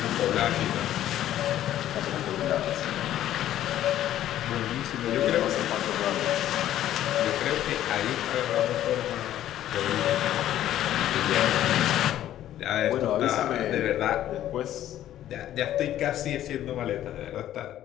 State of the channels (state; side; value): quieter; right; 12.3 dB